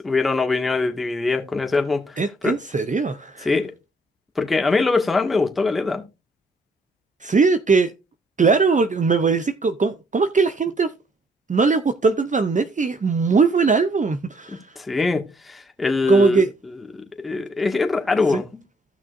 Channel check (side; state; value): both; normal; correlation 0.67